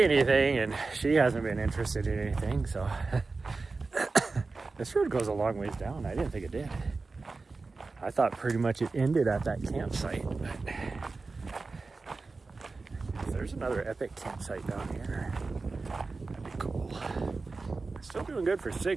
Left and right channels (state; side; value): quieter; left; 3.9 dB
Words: anything, and she hasn't been interested in anything. So this road goes a long ways down. I didn't think it did. I thought pretty much it ended at that campsite, but there's another epic campsite down here. That'd be cool. Still doing good for